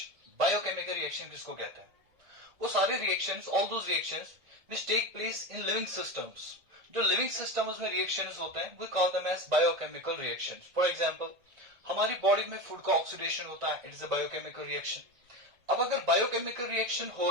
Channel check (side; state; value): left; late; 1.4 ms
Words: Biochemical reaction किसको कहते हैं? वो सारे reactions, all those reactions which take place in living systems. जो living systems में reactions होते हैं, we call them as biochemical reactions. For example, हमारी body में food का oxidation होता है, it is a biochemical reaction. अब अगर बायोकेमिकल रिएक्शन हो